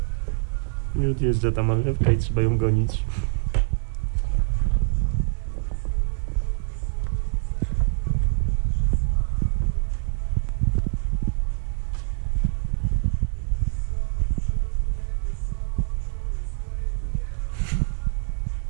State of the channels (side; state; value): left; silent; digital silence